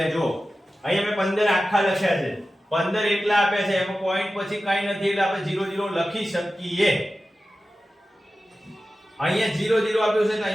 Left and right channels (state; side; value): normal; both; correlation 0.94